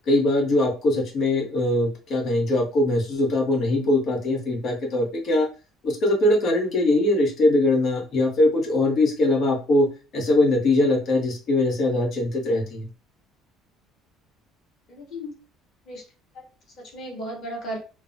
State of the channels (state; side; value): normal; both; correlation 0.64